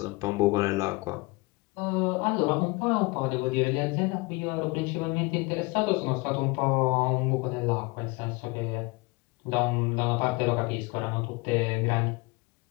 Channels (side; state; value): right; quieter; 25.7 dB